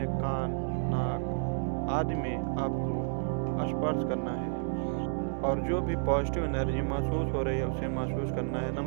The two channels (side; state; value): left; silent; digital silence